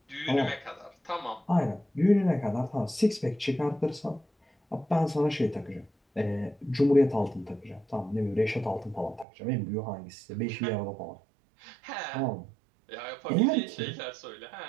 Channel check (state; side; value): drops out; left; at 9.2 s